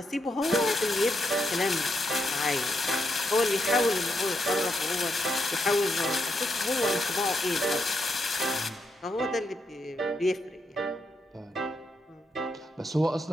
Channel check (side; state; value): both; normal; correlation 0.81